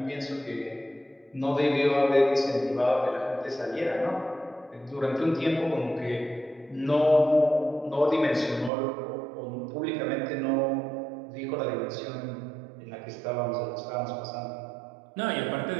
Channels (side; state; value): left; drops out; at 8.7 s